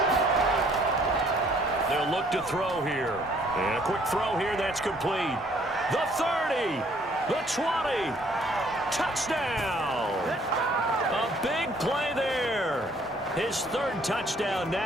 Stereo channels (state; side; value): normal; both; correlation 0.62